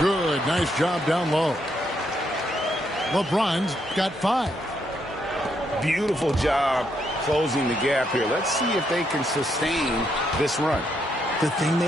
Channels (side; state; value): both; normal; correlation 0.76